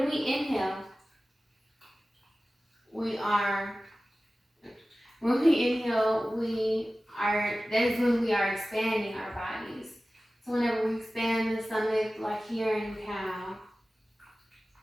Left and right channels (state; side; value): normal; both; correlation 0.96